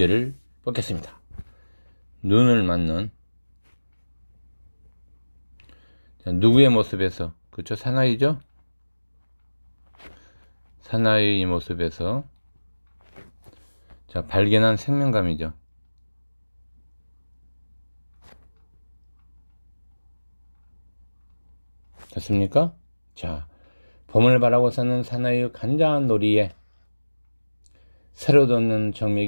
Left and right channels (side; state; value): both; inverted; correlation -1.00